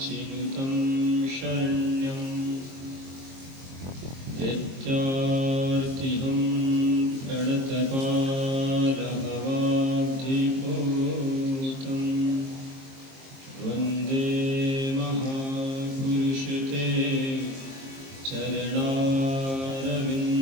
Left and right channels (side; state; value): left; late; 22 ms